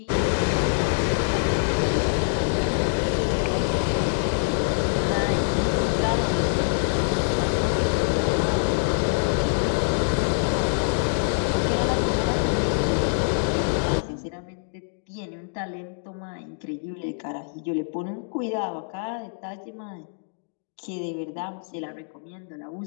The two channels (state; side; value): silent; right; digital silence